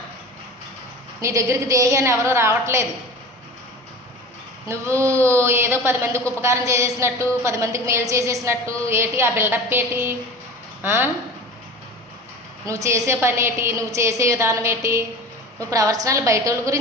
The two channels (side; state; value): both; normal; correlation 0.35